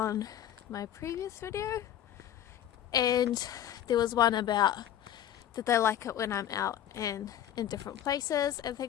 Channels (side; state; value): right; quieter; 11.0 dB